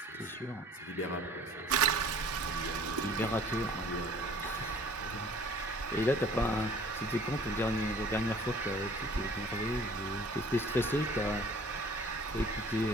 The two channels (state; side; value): normal; both; correlation 0.50